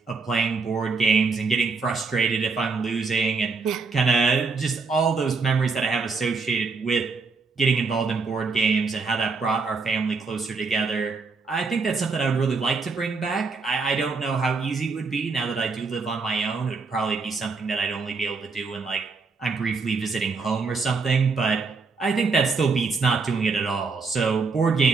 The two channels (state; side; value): quieter; left; 4.5 dB